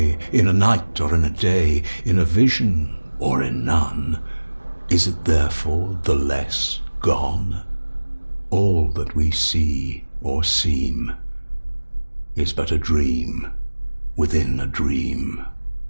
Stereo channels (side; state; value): both; inverted; correlation -1.00